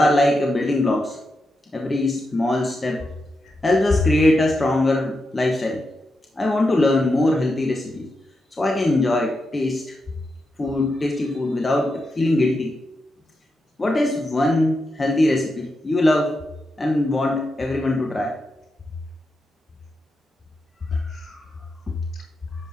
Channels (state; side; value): normal; both; correlation 0.87